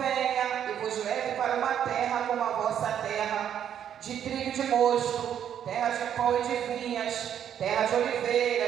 e vos leve para uma terra como a vossa terra, de trigo e de mosto, terra de pão e de vinhas, terra de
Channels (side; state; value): left; quieter; 9.4 dB